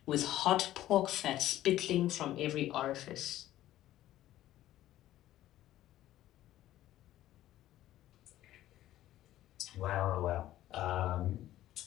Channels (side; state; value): right; quieter; 13.9 dB